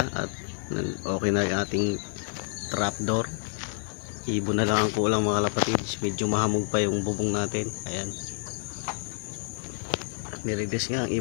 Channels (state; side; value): silent; right; 59 dB below the other